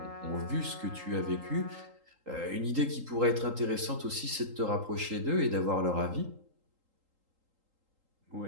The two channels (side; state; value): left; late; 3.8 ms